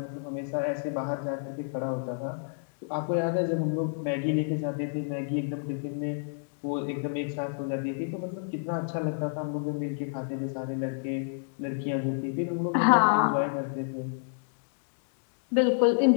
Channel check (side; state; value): right; silent; digital silence